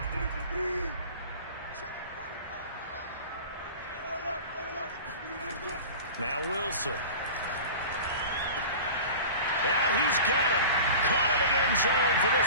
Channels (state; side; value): inverted; both; correlation -0.36